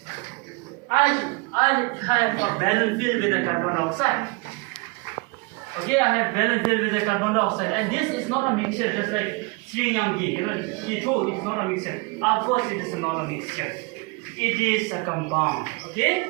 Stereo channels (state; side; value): quieter; left; 29.0 dB